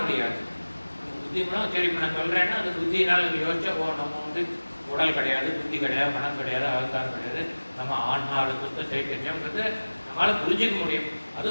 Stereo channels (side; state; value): both; inverted; correlation -1.00